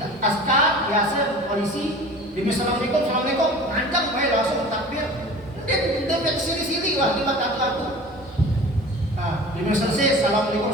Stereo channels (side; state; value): both; normal; correlation 0.40